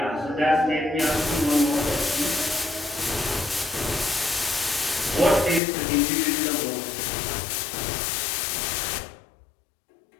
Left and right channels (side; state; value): right; drops out; at 5.6 s